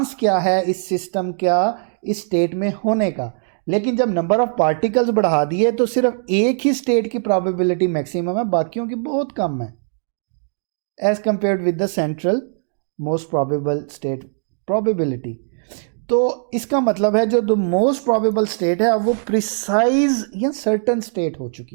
क्या है इस सिस्टम का इस स्टेट में होने का। लेकिन जब नंबर ऑफ पार्टिकल्स बढ़ा दिए तो सिर्फ एक ही स्टेट की प्रोबेबिलिटी मैक्सिमम है, बाकियों की बहुत कम है as compared with the central most probable state probability. तो इसका मतलब है जो द मोस्ट प्रोबेबल स्टेट है अब वो प्रिसाइज या सर्टन स्टेट हो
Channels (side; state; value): left; silent; digital silence